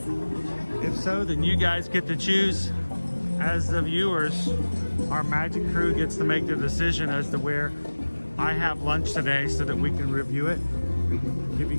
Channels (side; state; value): both; inverted; correlation -1.00